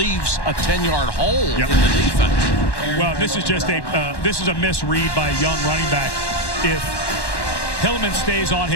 a 10-yard hole in the defense. Well, this is just this is a misread by a young running back. If Hillman stays on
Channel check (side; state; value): right; late; 1.1 ms